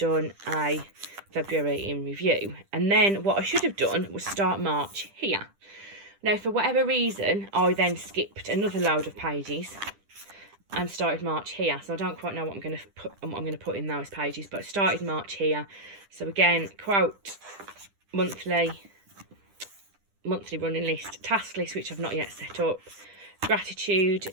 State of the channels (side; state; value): left; late; 10 ms